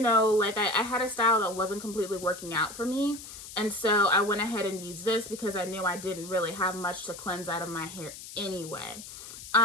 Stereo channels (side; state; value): left; noise; hiss, 13 dB below the sound